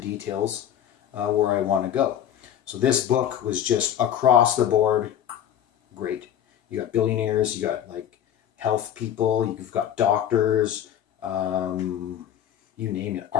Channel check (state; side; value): quieter; right; 10.2 dB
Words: where I want to go. So this book was just across the board great. You got billionaires, you got like health people, you've got doctors, you name it,